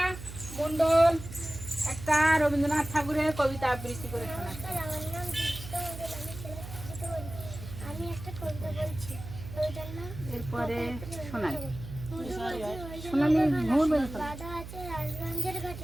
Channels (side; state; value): right; noise; hum, 11 dB below the sound